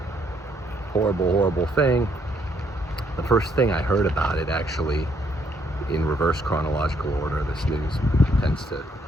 Horrible, horrible thing. The first thing I heard about it, actually, in reverse chronological order, this news tends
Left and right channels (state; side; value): normal; both; correlation 0.70